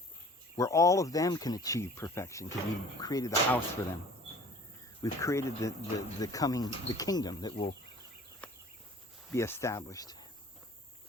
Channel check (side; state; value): both; normal; correlation 0.47